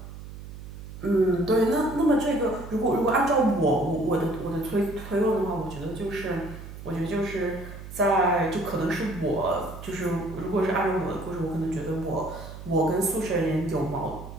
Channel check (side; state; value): right; noise; hum, 13 dB below the sound